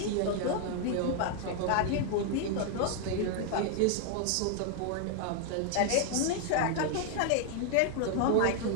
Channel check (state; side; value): different; both; correlation 0.00